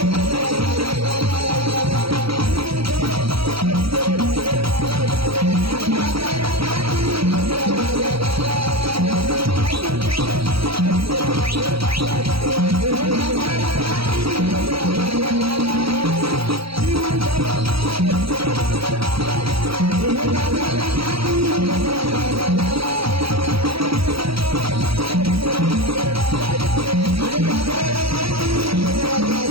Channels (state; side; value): late; left; 0.75 ms